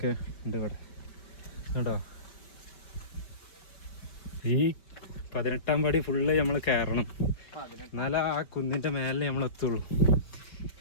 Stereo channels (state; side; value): late; right; 5.2 ms